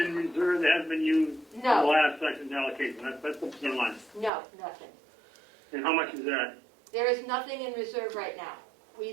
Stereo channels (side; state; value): left; drops out; at 4.3 s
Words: reserve that hasn't been used in the last section's allocation? That's the bottom line. No, nothing. And how much is that? There is nothing in reserve right now.